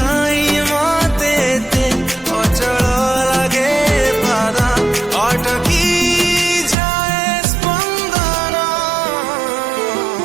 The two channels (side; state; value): left; drops out; at 6.8 s